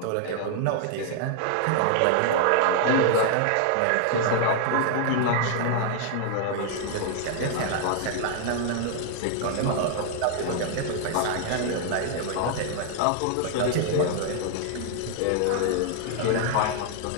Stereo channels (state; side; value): different; both; correlation 0.00